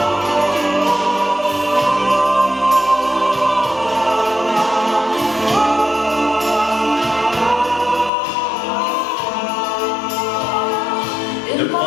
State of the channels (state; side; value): drops out; right; at 8.1 s